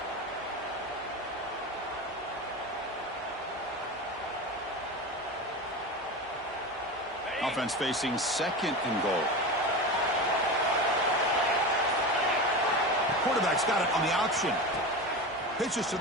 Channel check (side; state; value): both; normal; correlation 0.25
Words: Offense facing 2nd and goal. Quarterback's got it on the option. Pitches to